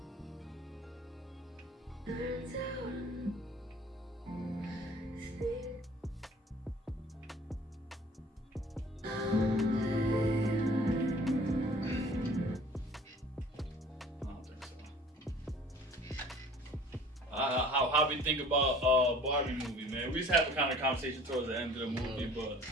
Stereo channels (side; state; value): both; normal; correlation 0.49